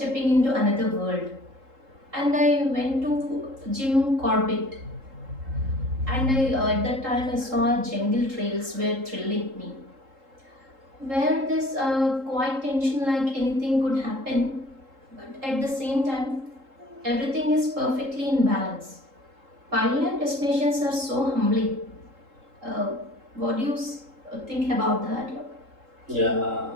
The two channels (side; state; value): left; late; 3.8 ms